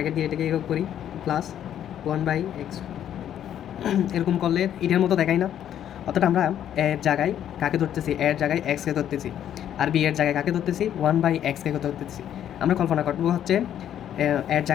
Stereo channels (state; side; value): quieter; right; 10.4 dB